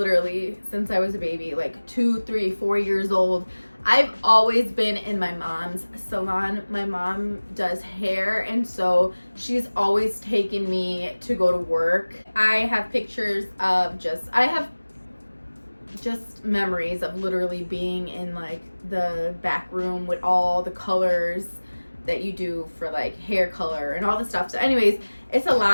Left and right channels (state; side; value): inverted; both; correlation -1.00